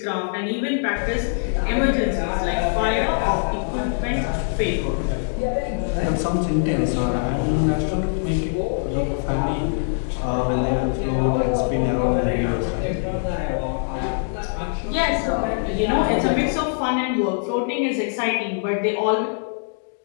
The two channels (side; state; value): right; silent; digital silence